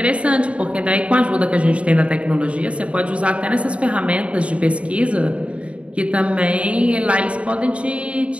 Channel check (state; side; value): late; left; 0.062 ms